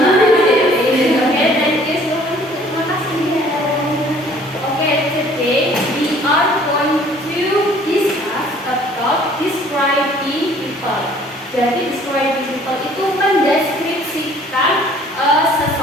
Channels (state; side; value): normal; both; correlation 0.55